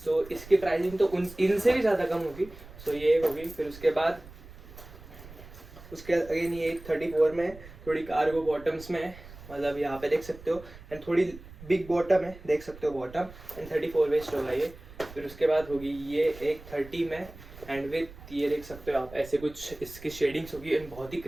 सो इसकी प्राइसिंग तो इनसे भी ज्यादा कम होगी। सो ये एक होगी। फिर उसके बाद अगेन ये एक 34 में है, थोड़ी कार्गो बॉटम्स में है, मतलब यहाँ पे देख सकते हो एंड थोड़ी बिग बॉटम है, देख सकते हो बॉटम एंड 34 वेस्ट होगा ये। फिर उसके बाद होगी ये एक 30 में एंड विथ ये देख सकते हो आप, ऐसे कुछ इसकी शेडिंग्स होगी एंड बहुत ही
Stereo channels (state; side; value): noise; right; rumble, 18 dB below the sound